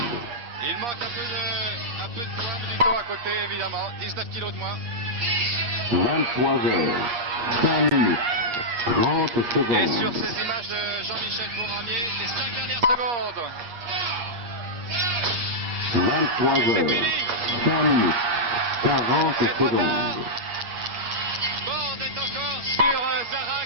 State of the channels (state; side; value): late; left; 8.4 ms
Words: Il manque un peu de temps à côté, évidemment. 19 kilos de moins. 23 heures, 5 minutes, 30 Et sur secondes. ces images de Jean-Michel Fournier, les 5 dernières secondes. 23 C'est heures, fini. 5 minutes, 40 C'est trop tard. secondes. Borde est encore sur